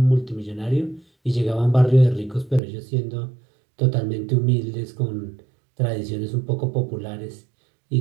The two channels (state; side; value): drops out; left; at 2.6 s